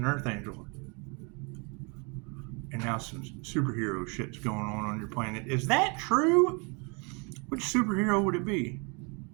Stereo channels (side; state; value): left; quieter; 32.6 dB